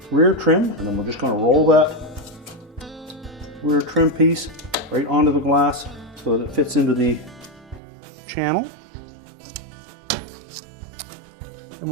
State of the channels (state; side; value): drops out; left; at 7.8 s